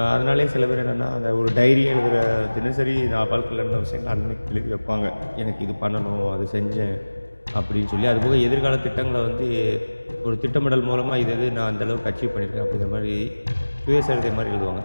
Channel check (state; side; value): inverted; both; correlation -1.00